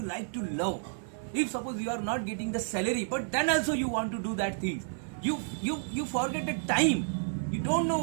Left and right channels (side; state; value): left; silent; 57 dB below the other